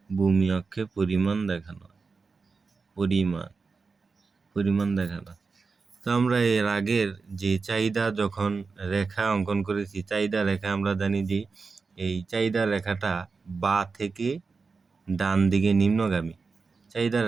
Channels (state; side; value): quieter; left; 4.6 dB